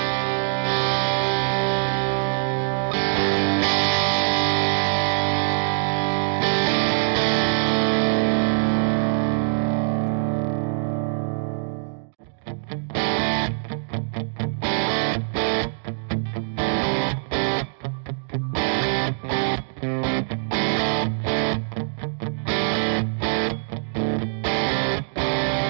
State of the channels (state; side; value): silent; left; digital silence